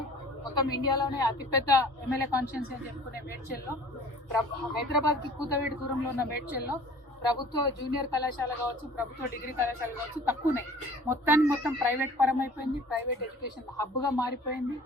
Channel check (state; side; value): normal; both; correlation 0.48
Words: మొత్తం ఇండియాలోనే అతిపెద్ద ఎమ్మెల్యే కాన్స్టిట్యున్సీ అని చెప్పుకునే మేడ్చల్లో, హైదరాబాద్కి కూతవేడి దూరంలో ఉన్న మేడ్చల్లో ప్రభుత్వ జూనియర్ కళాశాల కావచ్చు, ప్రభుత్వ డిగ్రీ కళాశాల కావచ్చు తక్కువనే. మొత్తం ప్రైవేట్ పరం అయిపోయింది, ప్రైవేట్ ఎడ్యుకేషన్ హబ్గా మారిపోయింది,